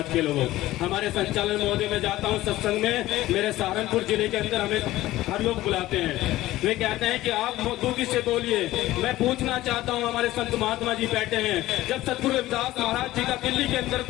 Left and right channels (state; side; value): quieter; right; 16.2 dB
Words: के लोगों? हमारे संचालन महोदय में जाता हूँ सत्संग में, मेरे सहारनपुर जिले के अंदर हमें हर लोग बुलाते हैं, वे कहते हैं कि आप दूकी से बोलिए। मैं पूछना चाहता हूँ, हमारे संत महात्मा जी बैठे हैं, जब सतगुरु रविदास महाराज जी का दिल्ली के अंदर